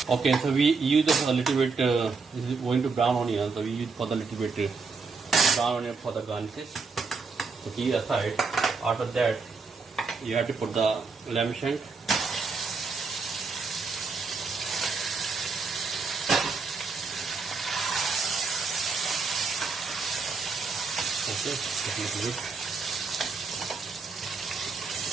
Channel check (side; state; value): left; quieter; 4.7 dB